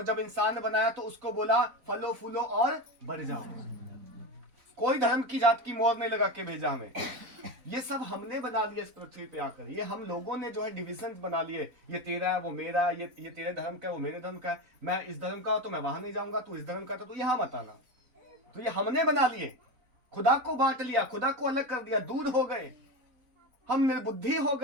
जब इंसान बनाया तो उसको बोला फलो फूलो और बढ़ जाओ। कोई धर्म की जात की मोहर नहीं लगा के भेजा हमें। ये सब हमने बना लिया इस पृथ्वी पे आकर। ये हम लोगों ने जो है डिविजन बना लिए, ये तेरा है वो मेरा, ये तेरे धर्म का है वो मेरे धर्म का है, मैं इस धर्म का हूं तो मैं वहां नहीं जाऊंगा, तू इस धर्म का तो यहां मत आना। तो ये हमने बना लिए, खुदा को बांट लिया, खुदा को अलग कर दिया, दूर हो गए, हम निर्बुद्धि हो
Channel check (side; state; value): left; late; 4.0 ms